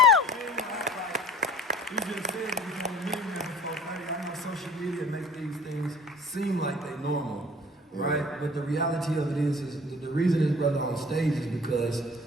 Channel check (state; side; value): normal; both; correlation 0.47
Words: Social media makes these things seem like they normal, right? But the reality of it is the reason this brother on stage is because